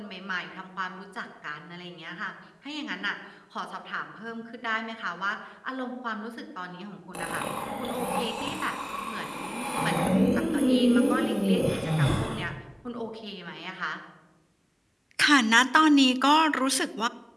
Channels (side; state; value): both; identical; correlation 1.00